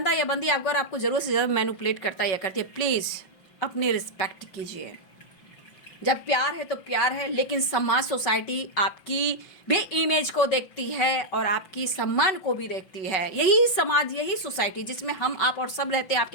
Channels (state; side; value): late; right; 5.3 ms